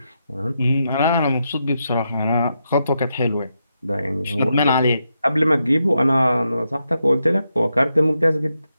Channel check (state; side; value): inverted; both; correlation -0.84